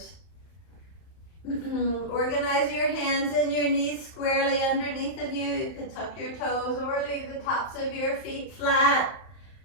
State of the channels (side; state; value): right; late; 31 ms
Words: Organize your hands and your knees squarely underneath of you. You can tuck your toes or leave the tops of your feet flat